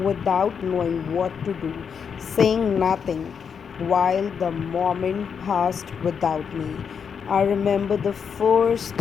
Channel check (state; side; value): quieter; right; 6.8 dB